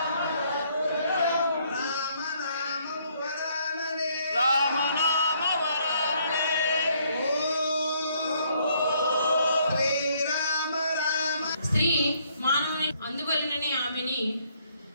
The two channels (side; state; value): both; inverted; correlation -0.67